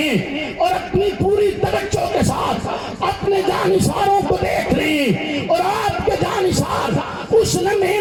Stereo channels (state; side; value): identical; both; correlation 1.00